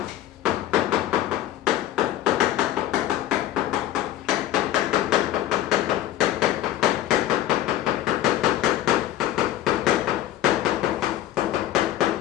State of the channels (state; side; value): quieter; right; 13.2 dB